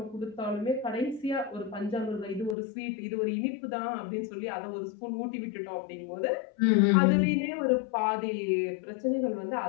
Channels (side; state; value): right; drops out; at 2.6 s